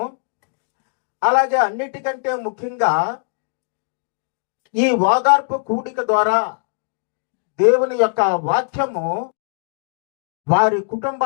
అలాగే అన్నిటికంటే ముఖ్యంగా ఈ ఓదార్పు కూడిక ద్వారా దేవుని యొక్క వాక్యము వారి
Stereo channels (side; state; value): right; silent; digital silence